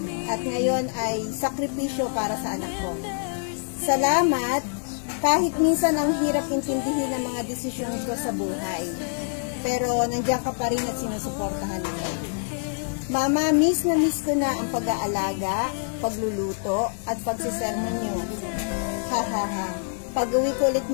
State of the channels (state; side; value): silent; right; 61 dB below the other